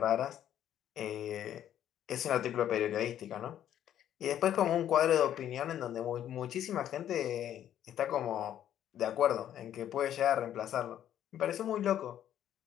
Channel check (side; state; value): right; quieter; 10.9 dB